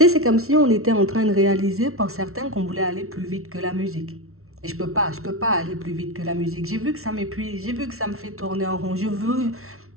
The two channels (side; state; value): left; late; 0.63 ms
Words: sais, c'est comme si on était en train de réaliser pour certains qu'on voulait aller plus vite que la musique. Et je peux pas aller plus vite que la musique. J'ai vu que ça m'épuise, j'ai vu que ça me fait tourner en rond. Je veux,